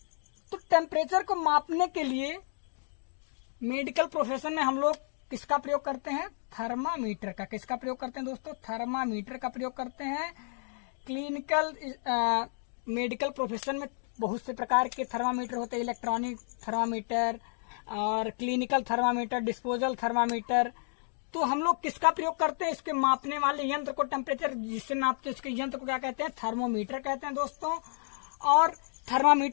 तो टेम्परेचर को मापने के लिए मेडिकल प्रोफेशन में हम लोग किसका प्रयोग करते हैं, थर्मामीटर का। किसका प्रयोग करते हैं दोस्तों, थर्मामीटर का प्रयोग करते हैं। क्लिनिकल मेडिकल प्रोफेशन में बहुत से प्रकार के थर्मामीटर होते हैं, इलेक्ट्रॉनिक थर्मामीटर और क्लिनिकल थर्मामीटर, डिस्पोजल थर्मामीटर। तो हम लोग किसका प्रयोग करते हैं, इसके मापने वाले यंत्र को, टेम्परेचर जिससे नापते हैं उसके यंत्र को क्या कहते हैं, थर्मोमीटर कहते हैं दोस्तों। और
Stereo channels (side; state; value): right; silent; 57 dB below the other